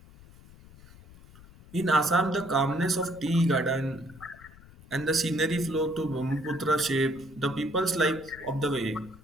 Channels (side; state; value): left; noise; rumble, 22 dB below the sound